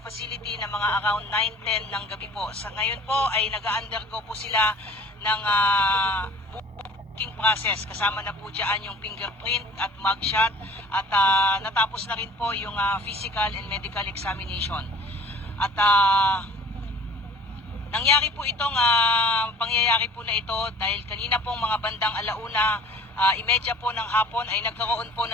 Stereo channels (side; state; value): both; normal; correlation 0.49